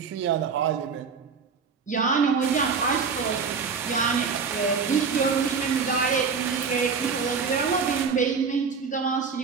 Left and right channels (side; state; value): left; quieter; 5.6 dB